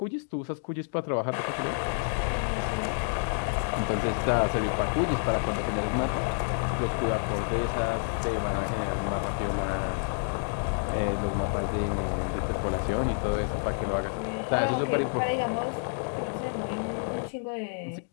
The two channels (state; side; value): silent; right; digital silence